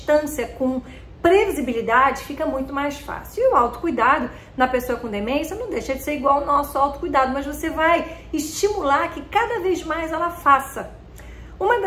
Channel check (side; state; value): both; identical; correlation 1.00